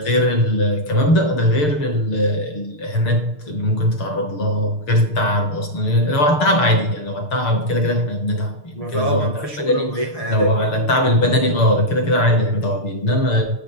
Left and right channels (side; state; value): right; late; 6.6 ms